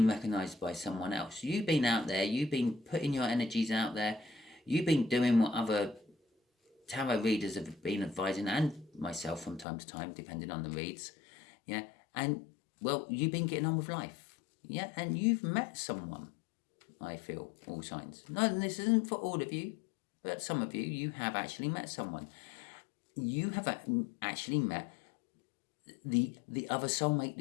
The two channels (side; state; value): right; drops out; at 9.7 s